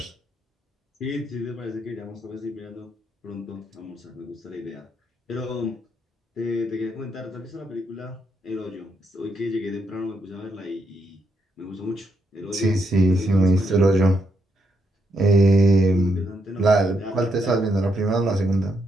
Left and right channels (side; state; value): both; normal; correlation 0.78